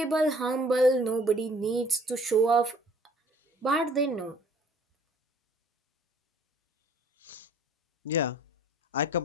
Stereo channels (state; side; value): normal; both; correlation 0.56